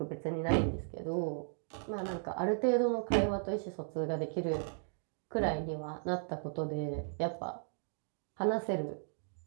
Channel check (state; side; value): silent; left; digital silence